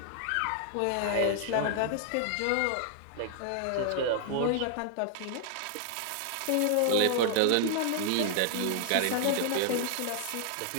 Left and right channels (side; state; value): both; different; correlation 0.00